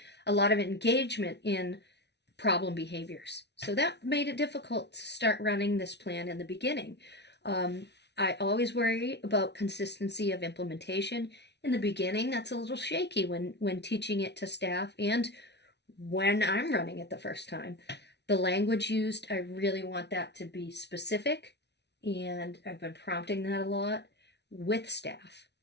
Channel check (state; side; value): late; right; 0.50 ms